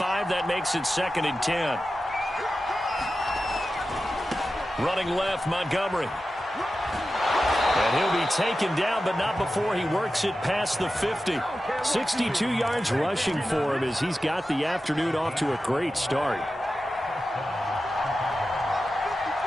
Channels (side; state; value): both; normal; correlation 0.93